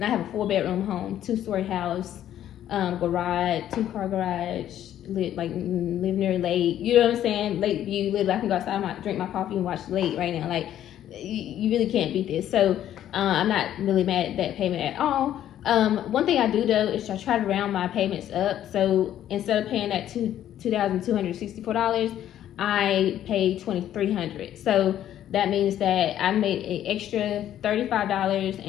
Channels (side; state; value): right; quieter; 11.5 dB